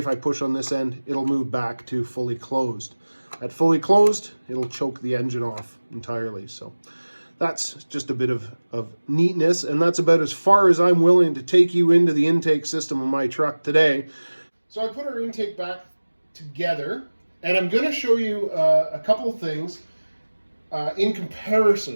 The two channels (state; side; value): inverted; both; correlation -1.00